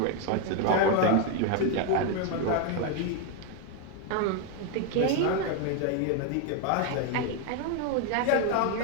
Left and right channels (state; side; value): different; both; correlation 0.01